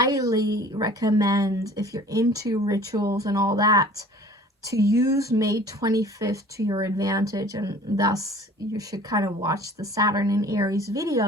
recommend, if you're into rituals and all that, to use May 25th to your advantage, and thus you should kind of watch the Saturn and Aries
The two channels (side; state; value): both; normal; correlation 0.48